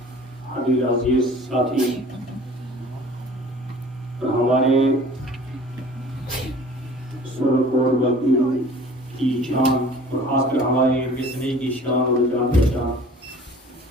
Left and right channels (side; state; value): both; normal; correlation 0.47